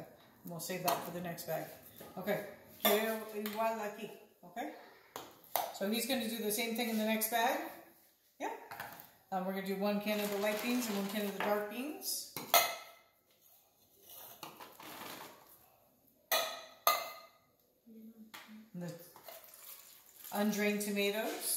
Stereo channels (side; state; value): both; identical; correlation 1.00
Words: And we'll save that for the next bag. Okay. Quiero igual aquí. Okay. So he's going to do the same thing in the next bag. Yeah. We're going to do 1 can of the light beans and 1 can of the dark beans. And the undrained